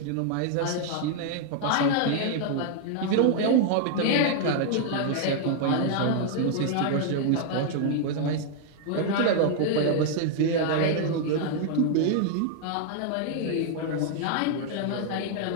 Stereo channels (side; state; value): both; different; correlation 0.00